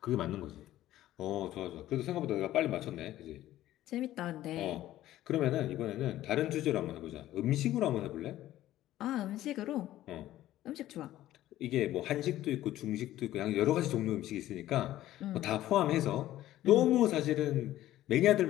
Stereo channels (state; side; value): quieter; right; 14.2 dB